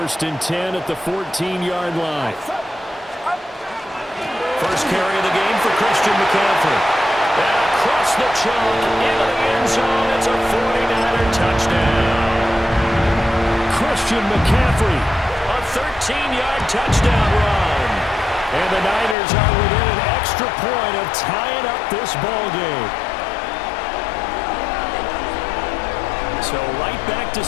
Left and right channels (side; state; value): right; drops out; at 19.2 s